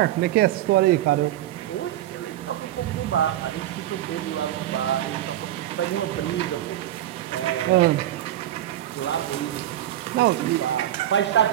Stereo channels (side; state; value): left; quieter; 13.1 dB